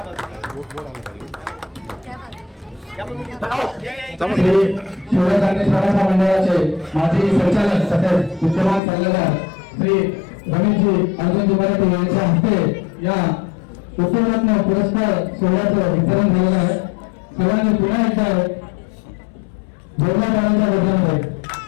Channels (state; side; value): drops out; right; at 8.8 s